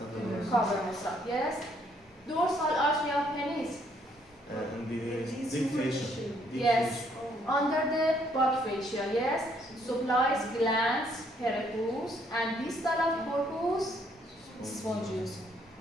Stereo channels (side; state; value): both; normal; correlation 0.68